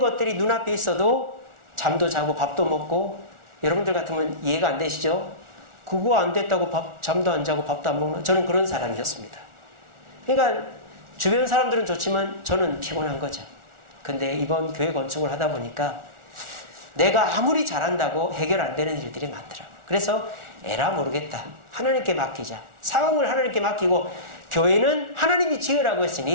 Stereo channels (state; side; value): late; left; 1.4 ms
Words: 눈앞에 있어도 잠도 자고 밥도 먹고 여러분들 같으면 이해가 안 되시죠? 그거 안 됐다고 잠도 안 자고 밥도 안 먹는 저는 그런 사람이었습니다. 그러니까 주변 사람들은 좋지만 저는 피곤한 거죠. 근데 이번 교회 건축을 하다 보니까 내가 아무리 잘한다고 해결 안 되는 일들이 많더라고요. 그래서 에라 모르겠다. 하나님께 맡기자. 상황을 하나님께 맡기고 교회는 하나님이 지으라고